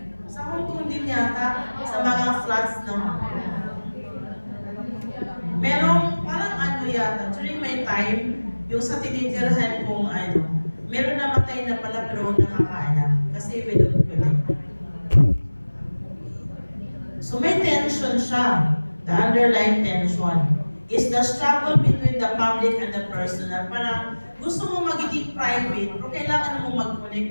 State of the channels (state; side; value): inverted; both; correlation -1.00